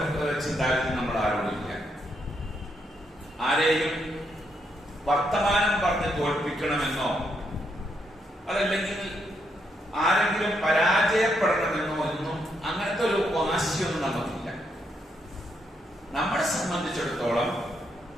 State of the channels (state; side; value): normal; both; correlation 0.78